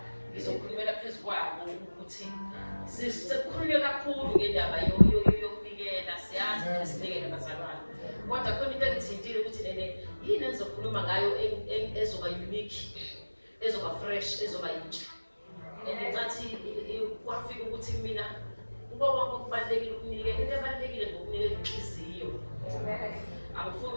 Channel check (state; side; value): inverted; both; correlation -1.00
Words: ngizokhulumela phezu kwabo ukuthi sekukhulunywe kakhulu ngendaba yokunikela siyazi sinikele abazalwane. Kodwa khona into engithintile ukuthi nene yini engizokhuluma ngayo ezoba unique, ezoba fresh, ezoba yintsha. Ngencathi kwafika ukuthi mina kuba konke okubalulekile ukunikela, into ebalulekile ngokunikela inhliziyo. Angifuni